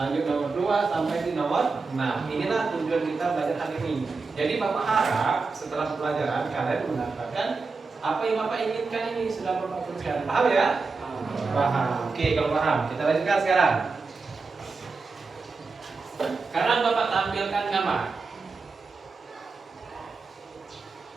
nomor 2 sampai di nomor 6. Inilah tujuan kita belajar hari ini. Jadi Bapak harap setelah pelajaran kalian mendapatkan apa yang Bapak inginkan ini sudah Bapak tuliskan. Paham ya? Paham. Oke, kalau paham, kita lanjutkan sekarang. Sekarang Bapak tampilkan gambar.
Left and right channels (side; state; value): left; quieter; 4.3 dB